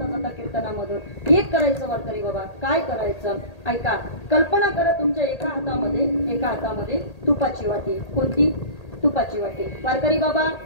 जाता कीर्तनामधून. एक करायचं वारकरी बाबा. काय करायचं ऐका. कल्पना करा तुमच्या एका हातामध्ये तुपाची वाटी. कोणती, तुपाची वाटी. वारकरी बाबा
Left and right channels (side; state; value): right; late; 1.8 ms